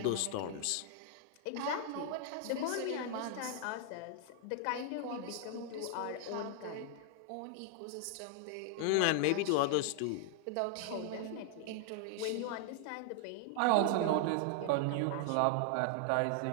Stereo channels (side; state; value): both; different; correlation 0.00